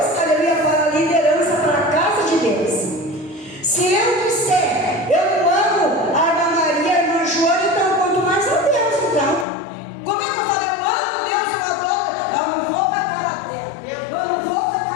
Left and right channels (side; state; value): right; drops out; at 9.5 s